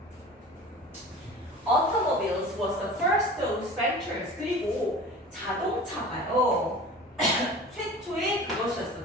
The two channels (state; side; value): normal; both; correlation 0.39